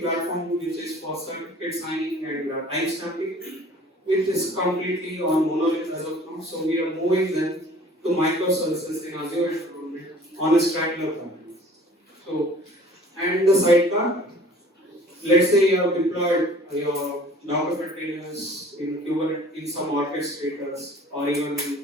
platform which is for certificate signing and timestamping, which is completely on monolith as of now. So we are moving them to microservices in Azure environment on a Strangler platform. So, and the sidecar, let's say you have deployed your Docker containers in Kubernetes in some orchestrators or even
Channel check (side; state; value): both; normal; correlation 0.50